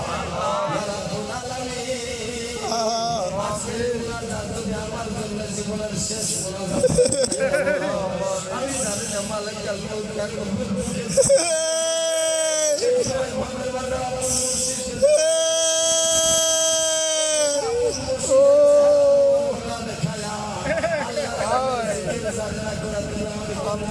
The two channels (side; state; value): both; identical; correlation 1.00